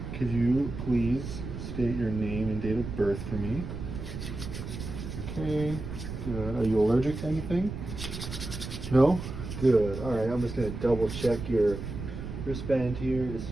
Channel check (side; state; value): right; noise; rumble, 7 dB below the sound